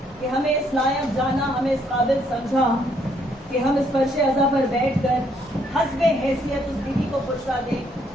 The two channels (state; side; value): normal; both; correlation 0.69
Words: کہ ہمیں اس لائق جانا، ہمیں اس قابل سمجھا کہ ہم اس فرش عزا پر بیٹھ کر حسب حیثیت اس بیوی کو پرسا دیں